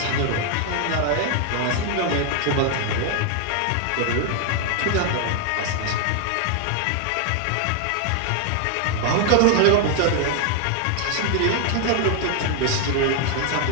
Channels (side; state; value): both; different; correlation 0.00